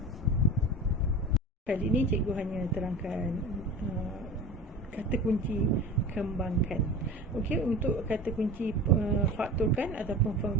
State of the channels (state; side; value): normal; both; correlation 0.33